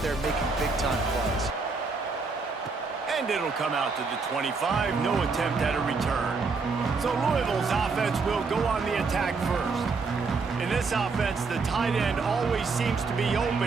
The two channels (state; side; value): quieter; left; 4.4 dB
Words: there making big-time plays. And it'll come out to the 25. No attempt at a return. So Louisville's offense will go on the attack first. In this offense, the tight end always seems to be